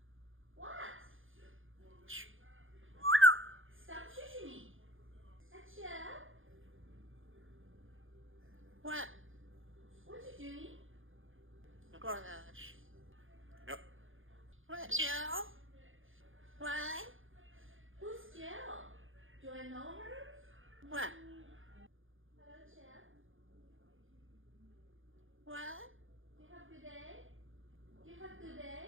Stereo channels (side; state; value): left; late; 0.58 ms